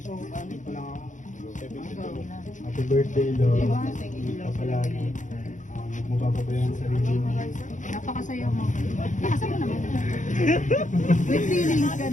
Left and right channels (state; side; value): late; right; 0.36 ms